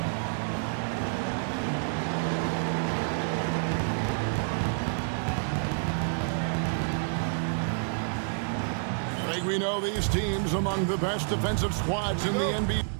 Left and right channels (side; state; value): left; silent; digital silence